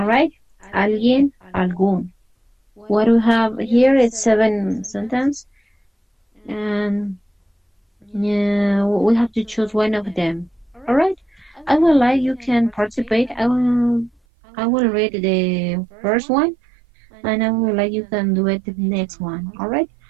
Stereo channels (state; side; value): drops out; left; at 14.1 s